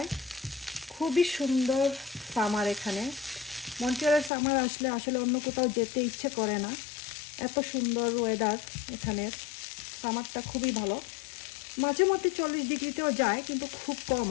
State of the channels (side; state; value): right; drops out; at 4.3 s